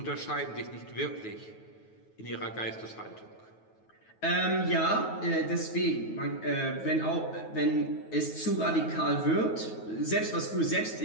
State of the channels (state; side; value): late; right; 9.3 ms